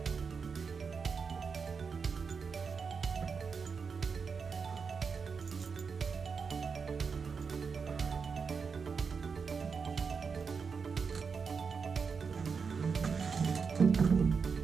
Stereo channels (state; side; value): quieter; left; 5.5 dB